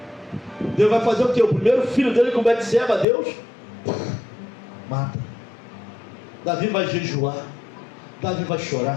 Deus vai fazer o quê? O primeiro filho dele com Betseba, Deus mata. Davi vai jejuar, Davi vai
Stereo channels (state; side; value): drops out; right; at 3.1 s